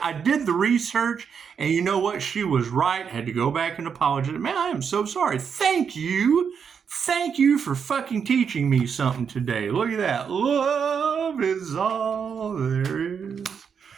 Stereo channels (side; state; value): left; quieter; 6.8 dB